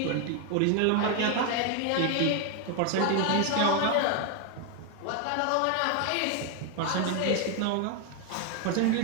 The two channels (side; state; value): both; different; correlation 0.01